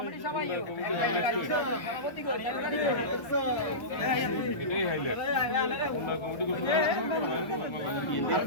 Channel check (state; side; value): late; right; 1.2 ms